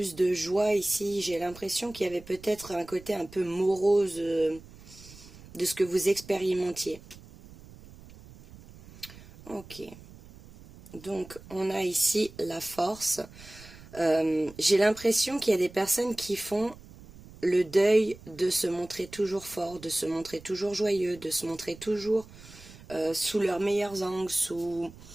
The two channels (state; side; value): noise; right; rumble, 20 dB below the sound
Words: de joie ici. J'ai l'impression qu'il y avait peut-être un côté un peu morose de ce que vous expérimentiez. Ok. Donc, on a ici la force. J'ai l'impression qu'il y a des personnes qui font le deuil de se montrer toujours fort, de se montrer toujours joyeux, de se montrer toujours sous leurs meilleurs angles, sous...